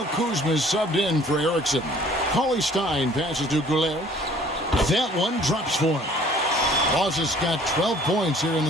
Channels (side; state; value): both; normal; correlation 0.54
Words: Kuzma is subbed in for Erickson. Cauley Stein passes to Goulet. That one drops for him. Boss has got 12 points here in